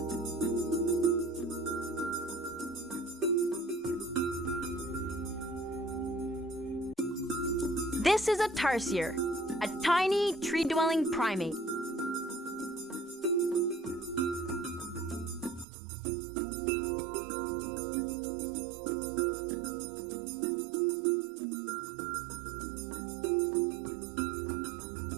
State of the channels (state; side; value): drops out; left; at 15.7 s